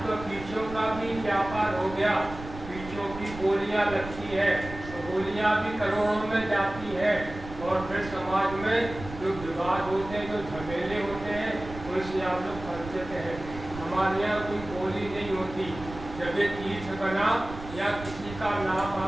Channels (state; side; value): noise; right; rumble, 13 dB below the sound